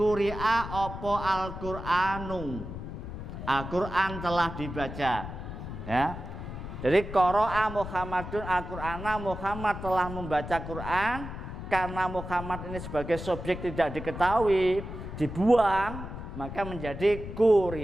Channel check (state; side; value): noise; left; rumble, 9 dB below the sound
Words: opo al-Qur'anu. Al-Qur'an telah dibaca, ya. Jadi qara'a Muhammadun Al-Qur'ana, Muhammad telah membaca Quran. Karena Muhammad ini sebagai subjek tidak diketahui, dibuang, maka menjadi